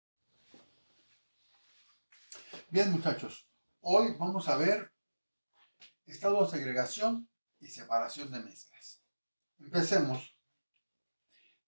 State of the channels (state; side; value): inverted; both; correlation -1.00